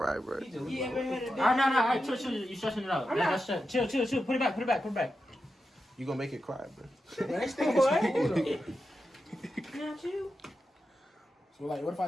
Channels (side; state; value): both; normal; correlation 0.89